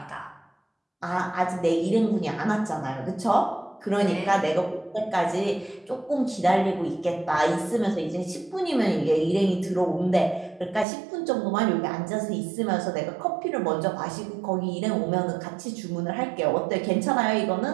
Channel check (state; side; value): drops out; left; at 10.9 s